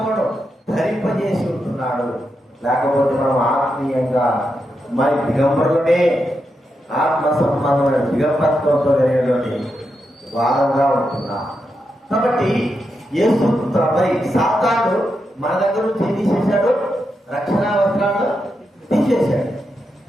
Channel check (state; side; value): normal; both; correlation 0.85